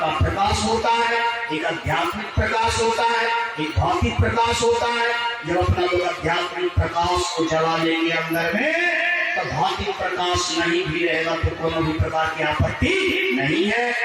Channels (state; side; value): identical; both; correlation 1.00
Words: प्रकाश होता है, एक आध्यात्मिक प्रकाश होता है, एक भौतिक प्रकाश होता है। जब अपना लोग आध्यात्मिक प्रकाश को जला लेंगे अंदर में, तो भौतिक प्रकाश नहीं भी रहेगा तो कोनो भी प्रकार की आपत्ति नहीं है।